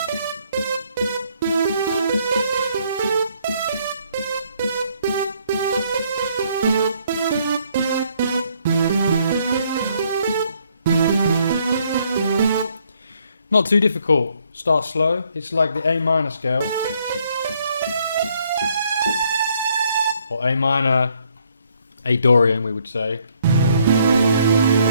not too difficult. Start slow. It's like the A minor scale. Or A minor, A Dorian we would say.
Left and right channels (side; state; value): both; inverted; correlation -0.68